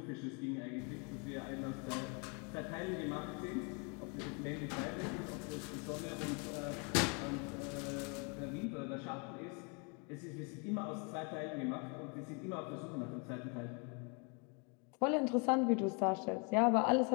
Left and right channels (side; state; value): right; quieter; 34.7 dB